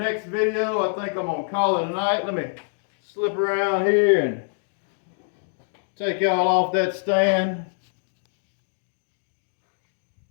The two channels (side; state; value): right; silent; digital silence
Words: video. I think I'm going to call it a night. Let me slip around here and take y'all off that stand.